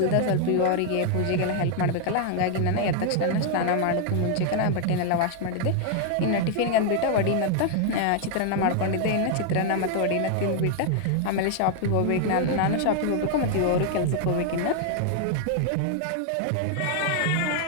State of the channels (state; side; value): different; both; correlation 0.00